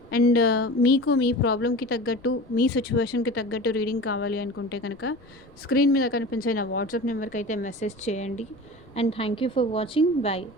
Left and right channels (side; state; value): left; noise; rumble, 26 dB below the sound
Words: అండ్ మీకు మీ ప్రాబ్లమ్‌కి తగ్గట్టు, మీ సిట్యుయేషన్‌కి తగ్గట్టు రీడింగ్ కావాలి అనుకుంటే గనక స్క్రీన్ మీద కనిపించే నా వాట్సాప్ నెంబర్‌కైతే మెసేజ్ చేయండి. And thank you for watching. By.